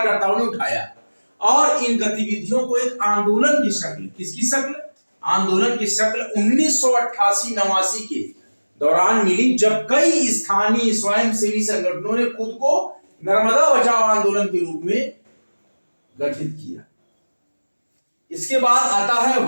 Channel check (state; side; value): inverted; both; correlation -1.00